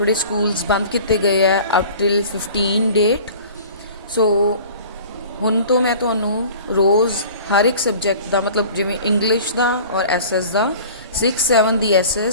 स्कूल्स बंद किए गए है अप टिल 15 डेट। सो हुण तो मैं तुहानूं रोज़ हर एक सबजैक्ट का मतलब जिवें इंग्लिश का और SS का 6, 7 की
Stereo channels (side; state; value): both; inverted; correlation -0.44